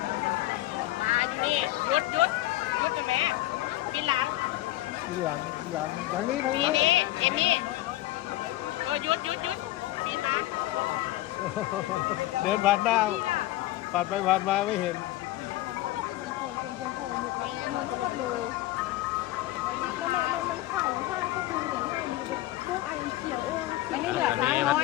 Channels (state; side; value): quieter; right; 16.5 dB